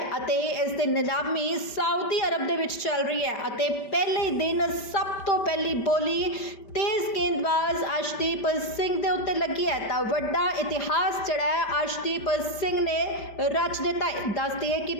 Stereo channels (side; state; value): right; late; 5.1 ms